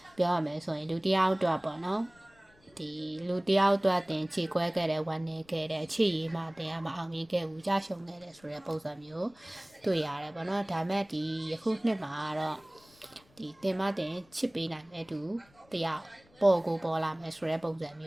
ပြောရမယ်ဆိုရင်လူတယောက်အတွက်ပေါ့နော်ဒီလူတယောက်အတွက်တင်ခြေခွဲခဲ့တဲ့ဝမ်းနေခဲ့တဲ့အခြေရည်မှတင်ကမအောင်မြင်ခဲ့ဘူးကြရှုံခဲ့တဲ့ဆိုတဲ့ပုံစံမျိုးတွေ့ရတယ်ပေါ့နော်ဒါမဲ့ဒီယခုနှစ်မှာတော့ဒီတင်မတင်ချစ်ပေးနိုင်တဲ့သူတယောက်ပေါ်ကိုပေါ်လာမယ်ဆိုတဲ့ပုံစံမ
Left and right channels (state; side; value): noise; left; rumble, 30 dB below the sound